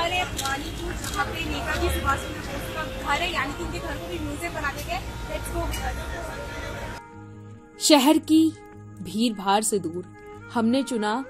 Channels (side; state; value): both; identical; correlation 1.00